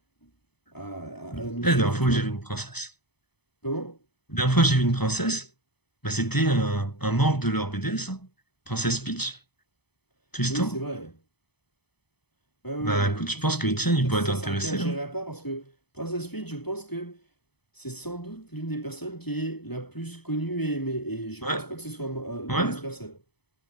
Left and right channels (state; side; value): late; right; 0.98 ms